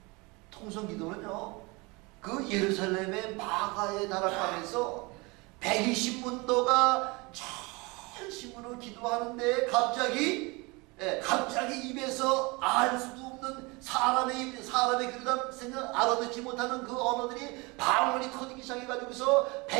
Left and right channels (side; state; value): left; quieter; 26.3 dB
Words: 통성기도는요, 그 예루살렘의 마가에 다락방에서 120문도가 전심으로 기도하는데 갑자기 입에서 알 수도 없는 사람의 그러다 생각 알아듣지 못하는 그 언어들이 방언이 터지기 시작해가지고서